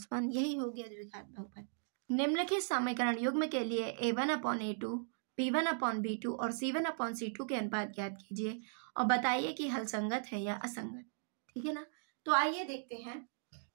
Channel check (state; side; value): silent; left; digital silence